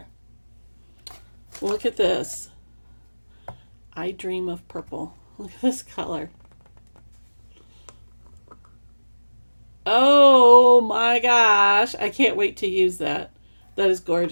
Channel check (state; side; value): inverted; both; correlation -1.00